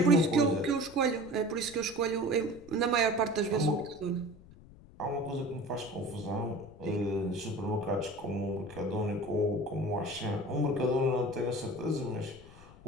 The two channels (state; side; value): noise; left; rumble, 21 dB below the sound